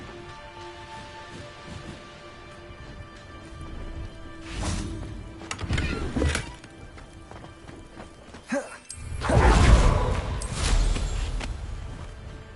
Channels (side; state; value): both; identical; correlation 1.00